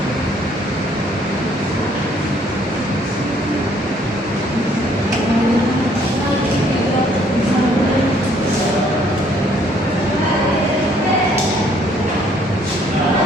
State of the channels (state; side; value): normal; both; correlation 0.64